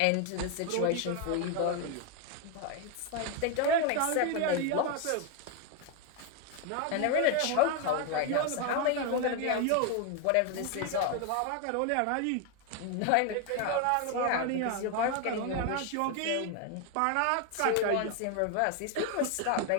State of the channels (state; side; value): different; both; correlation 0.01